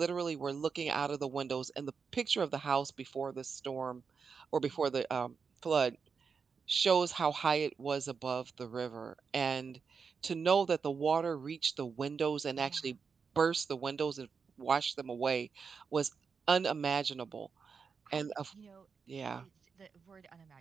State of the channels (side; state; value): left; quieter; 5.7 dB